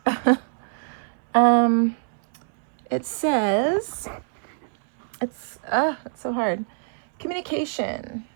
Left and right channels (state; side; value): silent; left; 62 dB below the other